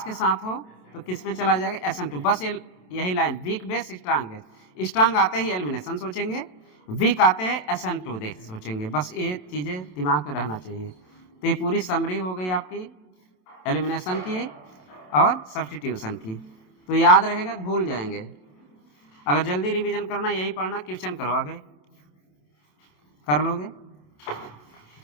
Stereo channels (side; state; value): right; late; 27 ms